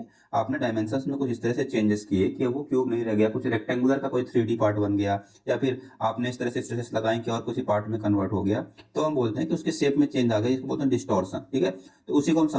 आपने डायमेंशंस में कुछ इस तरह से चेंजेस किए कि अब वो क्यूब नहीं रह गया, कुछ रेक्टेंगुलर का कोई 3D पार्ट बन गया, या फिर आपने इस तरह से स्ट्रेसेस लगाए कि और कुछ पार्ट में कन्वर्ट हो गया, तो हम बोलते हैं कि उसके शेप में चेंज आ गया, इसको बोलते हैं डिस्टॉर्शन। ठीक है, तो उसी को हम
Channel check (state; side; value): identical; both; correlation 1.00